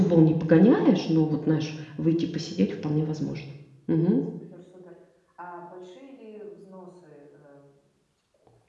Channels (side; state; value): both; identical; correlation 1.00